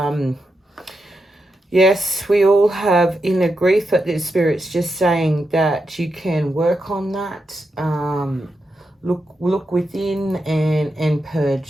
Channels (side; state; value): both; normal; correlation 0.86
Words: Yes, we all have inner grief, but the Spirit's just saying that you can work on that. Look within and